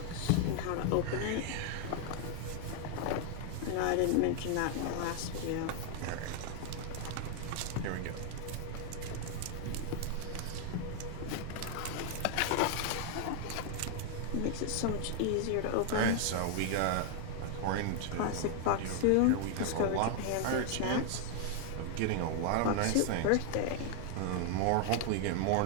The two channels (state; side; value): different; both; correlation 0.00